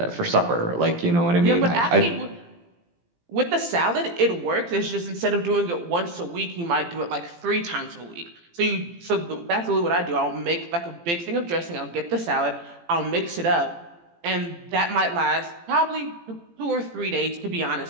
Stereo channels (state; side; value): late; left; 18 ms